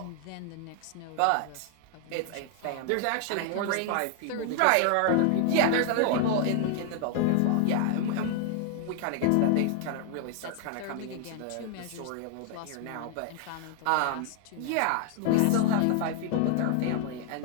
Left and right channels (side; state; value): both; different; correlation 0.00